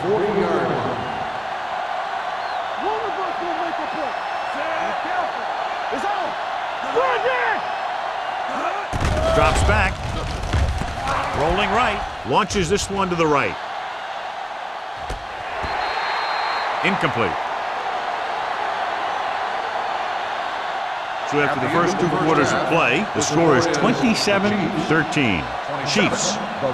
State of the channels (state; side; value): identical; both; correlation 1.00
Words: 40-yard line. One of us will make a play. Be careful. It's on. Run it! Drops back. Rolling right. Launches this one to the right. Incomplete. So after the first 2 quarters of play, the score is 27-13. Chiefs. The